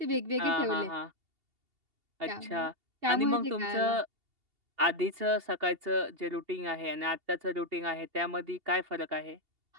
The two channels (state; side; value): late; left; 2.8 ms